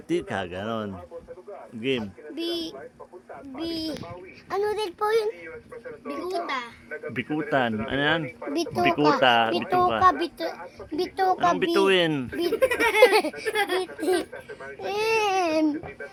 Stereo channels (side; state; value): both; identical; correlation 1.00